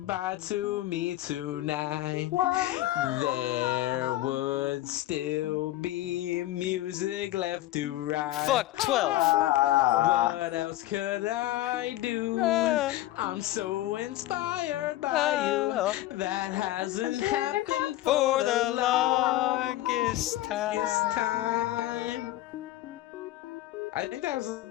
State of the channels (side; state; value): right; quieter; 15.4 dB